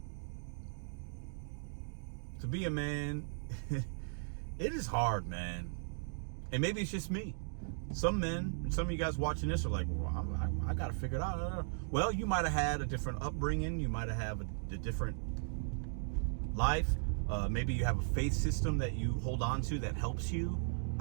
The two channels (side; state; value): left; silent; digital silence